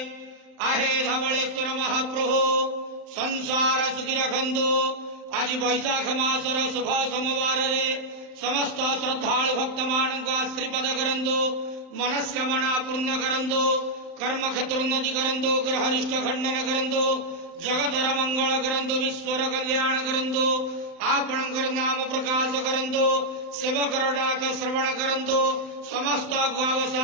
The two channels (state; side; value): late; left; 35 ms